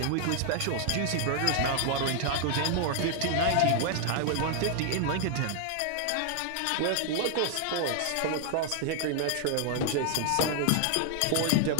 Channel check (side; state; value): both; different; correlation 0.00